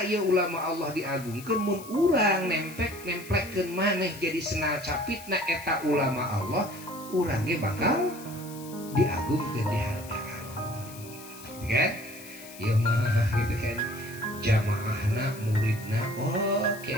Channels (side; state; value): left; noise; hiss, 17 dB below the sound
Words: ya ulama Allah diagungkeun mun urang nemplekeun maneh jadi senal capitna eta ulama Allah, urang ge bakal diagungkeun, dihargaan. Kan? Ya mah gitu kan. Jamaahna, muridna, oh